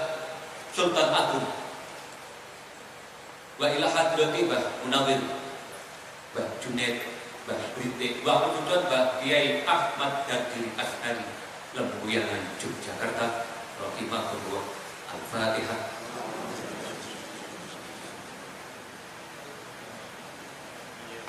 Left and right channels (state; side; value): identical; both; correlation 1.00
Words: Sultan Agung wa ila hadrati Mbah Munawir, Mbah Junaid, Mbah Brite, wa khususan Mbah Kiai Ahmad Dadiri As'ari Lembuyangan Yogyakarta rahimahullah. Al-Fatihah.